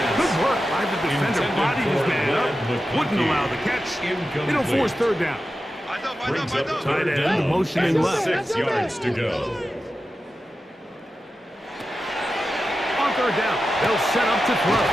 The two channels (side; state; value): both; normal; correlation 0.92